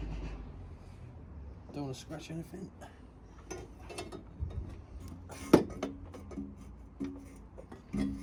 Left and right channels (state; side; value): identical; both; correlation 1.00